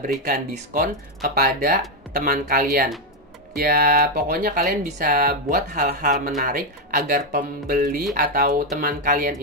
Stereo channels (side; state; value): both; normal; correlation 0.05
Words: berikan diskon kepada teman kalian. Ya, pokoknya kalian bisa buat hal-hal menarik agar pembeli atau teman kalian